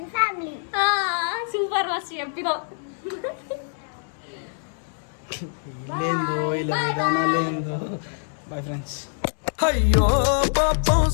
family. Super మస్తు చెప్పినావు. లేదో ఇలా విధానం లేదో. Bye friends. అయ్యో పాపం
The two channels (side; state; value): right; silent; 62 dB below the other